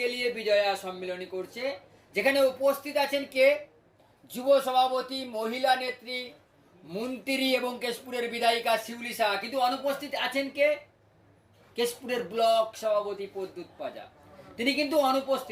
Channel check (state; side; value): identical; both; correlation 1.00